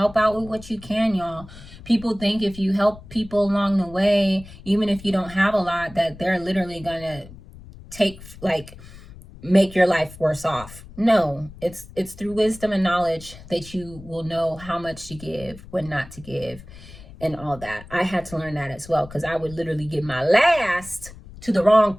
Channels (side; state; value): left; noise; rumble, 18 dB below the sound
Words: out with what you can, y'all. People think if you help people along the way, even if you don't have a lot, that they're literally going to make your life worse off. No, it's through wisdom and knowledge that you will know how much to give, when not to give, and all that. I had to learn that as well, because I would literally give my last to the wrong